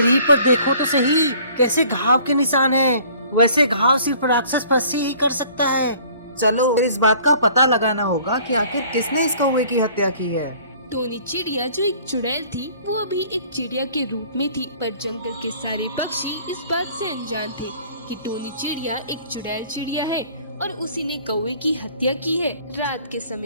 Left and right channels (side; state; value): both; inverted; correlation -0.53